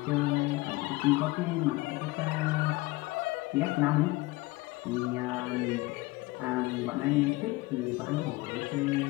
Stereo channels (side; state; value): right; quieter; 21.3 dB